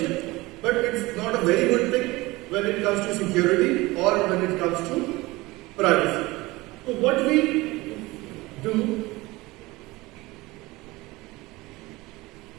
but it's not a very good thing when it comes to security or when it comes to privacy. So what we do,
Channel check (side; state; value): left; quieter; 21.0 dB